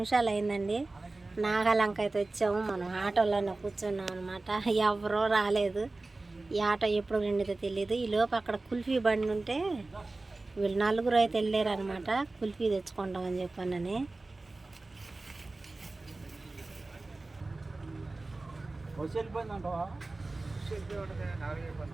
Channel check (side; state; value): left; quieter; 3.2 dB